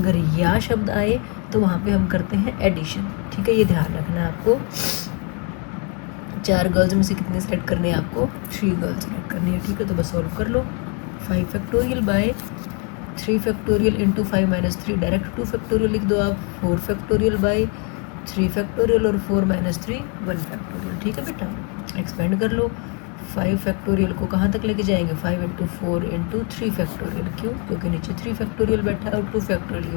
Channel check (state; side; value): quieter; right; 34.3 dB